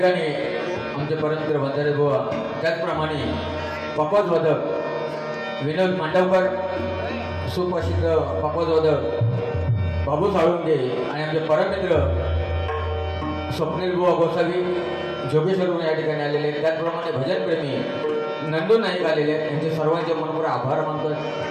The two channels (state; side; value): identical; both; correlation 1.00